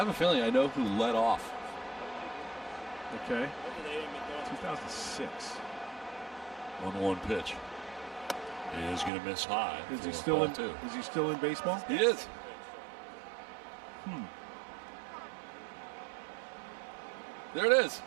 a feeling I know who led off. Okay. 2006. 1-1 pitch. He is going to miss high. Is he still in? Too. Is he still in baseball? He is. There it is.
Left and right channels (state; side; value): drops out; left; at 9.1 s